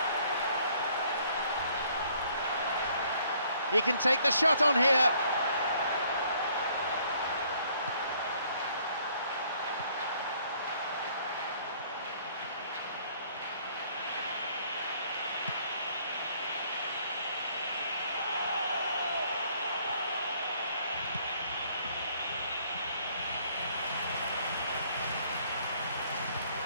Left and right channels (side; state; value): both; inverted; correlation -0.63